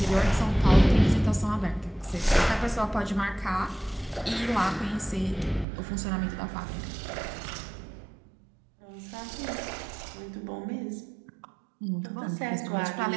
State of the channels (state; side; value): drops out; left; at 5.7 s